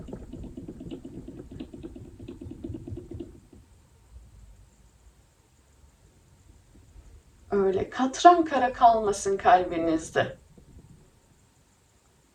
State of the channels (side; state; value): both; identical; correlation 1.00